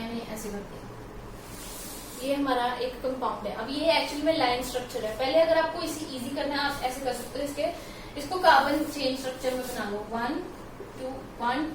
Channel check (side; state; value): both; identical; correlation 1.00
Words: ऐसे कर दिया। ये हमारा एक कंपाउंड है। अब ये एक्चुअली में लाइन स्ट्रक्चर है। पहले अगर आपको इसे इजी करना है, आप ऐसे कर सकते हो, इसको कार्बन चेन स्ट्रक्चर में बना लो। 1